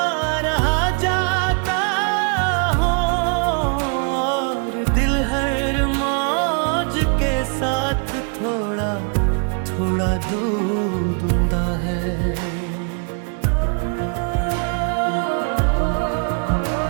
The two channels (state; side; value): quieter; left; 39.9 dB